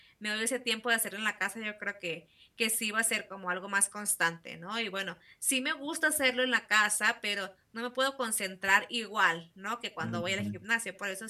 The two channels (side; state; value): both; identical; correlation 1.00